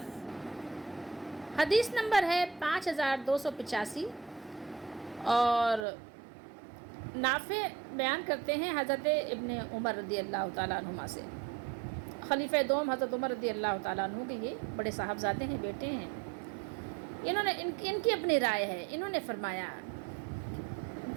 حدیث نمبر ہے 5285 اور نافع بیان کرتے ہیں حضرت ابن عمر رضی اللہ تعالیٰ عنہما سے. خلیفہ دوم حضرت عمر رضی اللہ تعالیٰ عنہ کے یہ بڑے صاحبزادے ہیں، بیٹے ہیں. انہوں نے ان کی اپنی رائے ہے. انہوں نے فرمایا،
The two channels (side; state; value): left; drops out; at 5.9 s